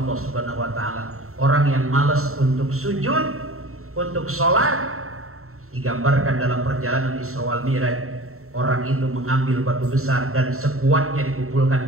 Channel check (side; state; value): left; late; 0.63 ms